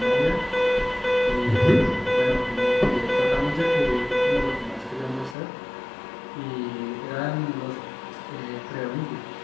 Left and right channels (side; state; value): right; drops out; at 5.4 s